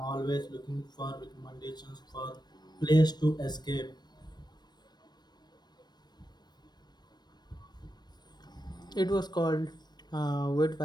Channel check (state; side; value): late; right; 0.20 ms